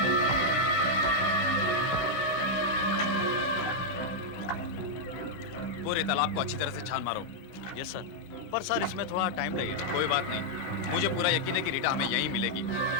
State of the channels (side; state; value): right; late; 13 ms